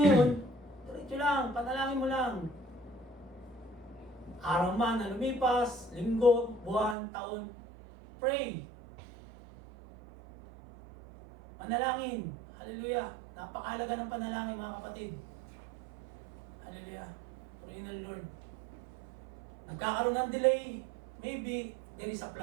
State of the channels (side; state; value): left; drops out; at 7.0 s